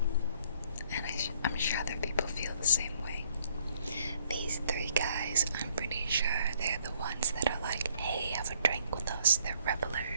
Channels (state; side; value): inverted; both; correlation -0.65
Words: and I'm sure other people feel the same way. These three guys, I'm pretty sure they're the ones that are like, hey, have a drink with us. They're